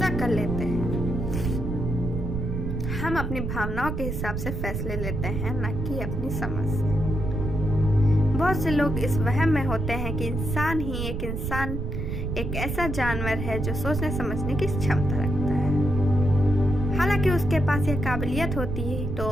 कर लेते हैं। हम अपनी भावनाओं के हिसाब से फैसले लेते हैं, न कि अपनी समझ से। बहुत से लोग इस वहम में होते हैं कि इंसान एक ऐसा जानवर है जो सोचने समझने की क्षमता रखता है। हालांकि उसके पास यह काबिलियत होती है तो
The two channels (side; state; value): right; noise; rumble, 3 dB below the sound